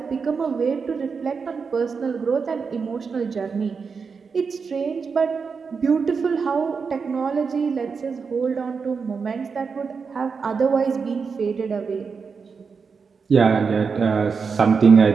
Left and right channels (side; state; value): left; quieter; 5.4 dB